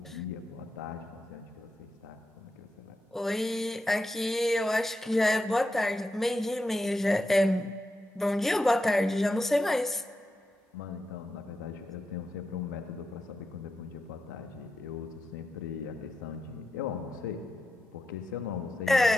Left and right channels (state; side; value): normal; both; correlation 0.88